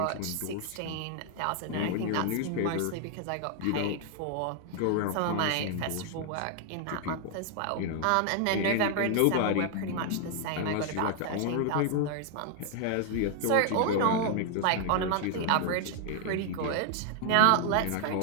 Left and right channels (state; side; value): different; both; correlation 0.00